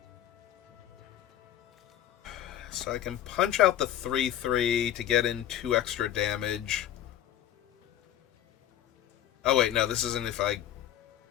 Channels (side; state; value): right; quieter; 11.8 dB